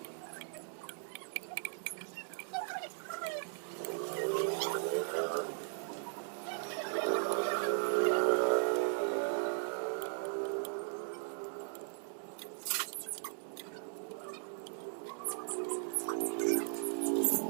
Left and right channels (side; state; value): left; silent; digital silence